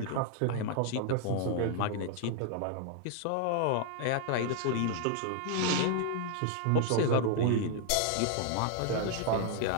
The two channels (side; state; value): both; different; correlation 0.00